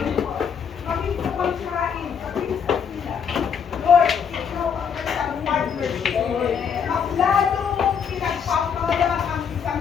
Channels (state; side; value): quieter; right; 7.0 dB